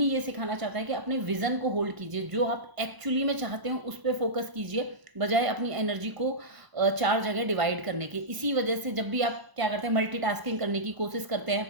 ये सिखाना चाहता है कि अपने विजन को होल्ड कीजिए, जो आप एक्चुअली में चाहते हो उस पर फोकस कीजिए, बजाय अपनी एनर्जी को 4 जगह डिवाइड करने के। इसी वजह से जब भी आप क्या करते हैं, मल्टीटास्किंग करने की कोशिश करते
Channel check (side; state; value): left; late; 1.0 ms